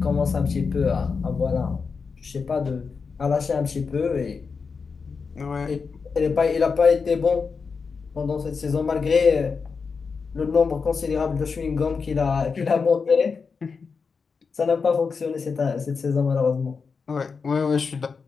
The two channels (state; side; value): quieter; right; 5.2 dB